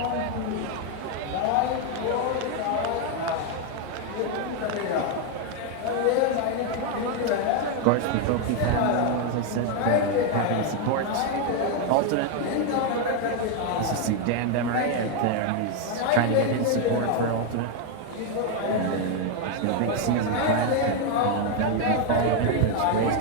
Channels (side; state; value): both; different; correlation 0.01